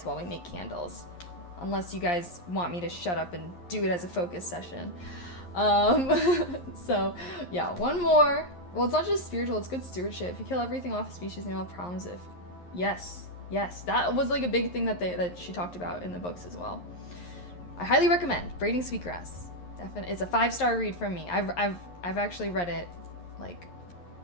while we make candles, unless you guys want me to shut up and do it as a focus session. So yeah, one more. Well, it's not just spiritual, it's good stewardship. If you kill everything off a species, you don't have problems. If yes, that was like a big thing that she talked about in the books as well. I highly recommend Braiding Sweetgrass. It's a 5-star read from me. I've actually read it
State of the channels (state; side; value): late; right; 11 ms